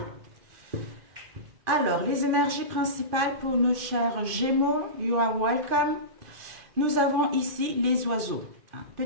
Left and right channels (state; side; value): late; left; 2.4 ms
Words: Alors, les énergies principales pour nos chers Gémeaux, you are welcome. Nous avons ici les oiseaux.